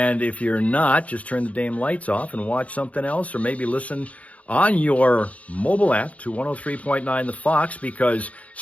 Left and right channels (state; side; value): late; right; 0.067 ms